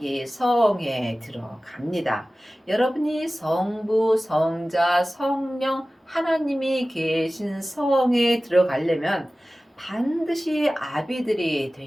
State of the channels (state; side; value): normal; both; correlation 0.97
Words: 성에 들어갑니다. 여러분이 성부, 성자, 성령 하나님이 계신 성에 들어가려면 반드시 아비들이